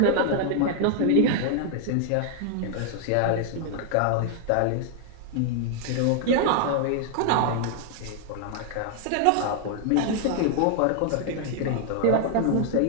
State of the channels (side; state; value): both; different; correlation 0.00